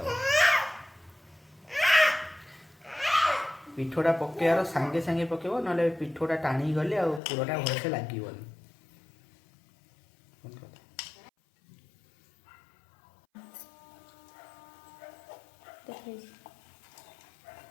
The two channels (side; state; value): right; drops out; at 7.2 s